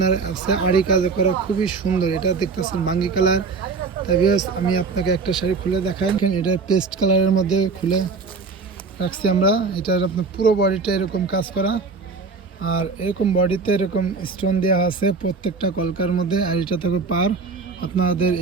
আছে আড়ি কাজ করা, খুবই সুন্দর। এটা দেখতেছেন বাঙ্গি কালার। তাই আমি আপনাকে একটা শাড়ি খুলে দেখাই। এটা পেস্ট কালারের মধ্যে খুলে রাখছি আমরা। এটার আপনার পুরো বডিটা এরকম কাজ করা, আর এরকম বডিতে এরকম স্টোন দেওয়া আছে প্রত্যেকটা কলকার মধ্যে। আর এটা থাকবে পার। আপনাদের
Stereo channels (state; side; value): quieter; left; 4.5 dB